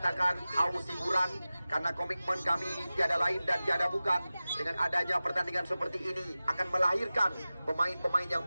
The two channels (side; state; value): both; inverted; correlation -0.96